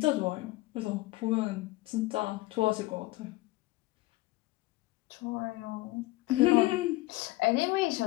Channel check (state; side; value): quieter; right; 19.7 dB